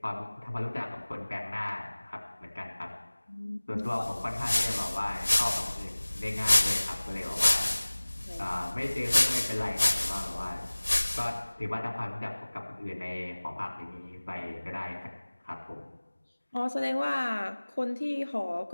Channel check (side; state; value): both; inverted; correlation -1.00